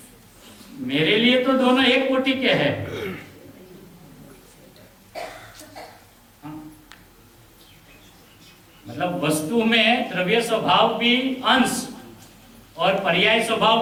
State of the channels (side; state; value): both; identical; correlation 1.00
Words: मेरे लिए तो दोनों एक कोटि के हैं। मतलब वस्तु में द्रव्य स्वभाव भी अंश और पर्याय